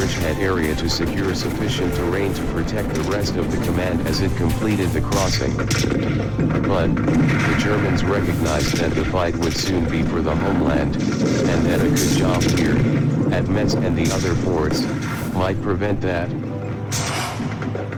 area to secure sufficient terrain to protect the rest of the command as it completed the crossing. But, the Germans recognized that the fight would soon be for the homeland, and that a good job here, at Metz and the other ports, might prevent that.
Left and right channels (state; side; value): identical; both; correlation 1.00